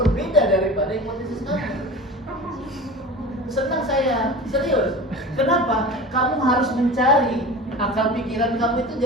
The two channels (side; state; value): both; normal; correlation 0.34